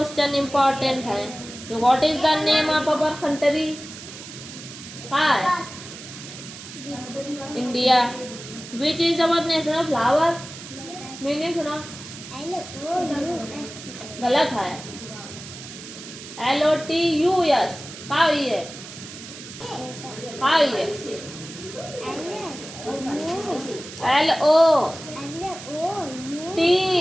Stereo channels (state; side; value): noise; right; hiss, 13 dB below the sound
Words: इम्पोर्टेंट हैं। What is the name of our country? हाँ, India. Which is our national flower? Meaning सुना। गलत है। LOTUS। का हुई है? का हुई है?